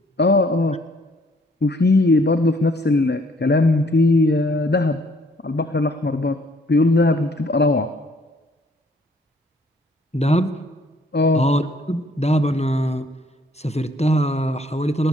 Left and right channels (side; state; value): both; normal; correlation 0.63